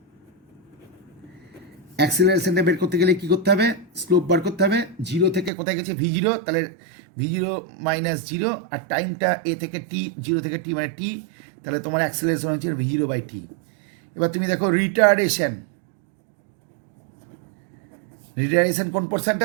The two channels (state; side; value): drops out; left; at 5.5 s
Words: অ্যাক্সিলারেশনটা বের করতে গেলে কী করতে হবে, স্লোপ বার করতে হবে। 0 থেকে কোথায় গেছে V0, তাহলে V0 - 0, আর টাইমটা এ থেকে টি, 0 থেকে টি মানে টি, তাহলে তোমার অ্যাক্সিলারেশন হচ্ছে V0/T। এবার তুমি দেখো রিটার্ডেশন কোন